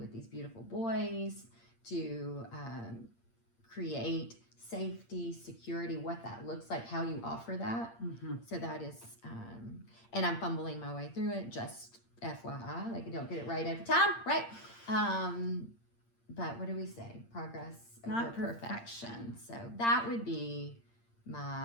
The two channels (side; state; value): right; late; 8.7 ms